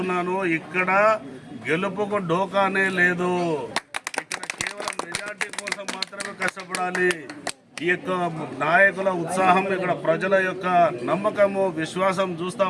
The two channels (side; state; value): both; identical; correlation 1.00